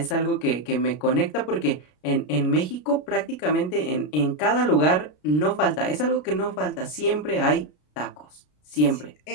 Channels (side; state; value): right; late; 33 ms